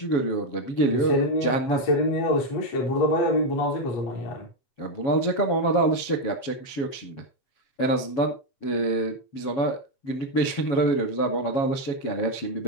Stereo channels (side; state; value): right; late; 7.2 ms